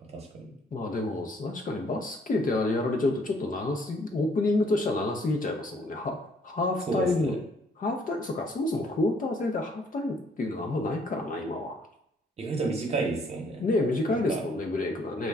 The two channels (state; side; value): normal; both; correlation 0.65